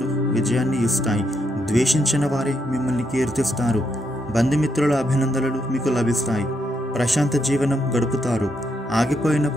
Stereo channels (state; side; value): normal; both; correlation 0.79